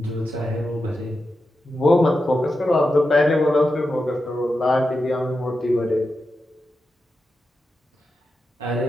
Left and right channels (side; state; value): both; normal; correlation 0.89